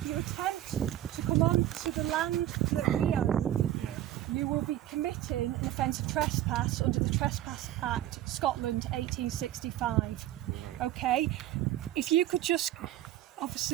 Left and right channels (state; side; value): quieter; left; 13.2 dB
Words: you attempt to come onto the land that we own, you will be committing an offence of trespass under the Trespass Act, Scotland, 1865. Okay? If you could just...